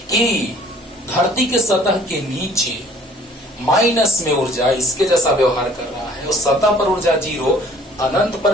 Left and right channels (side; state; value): both; normal; correlation 0.54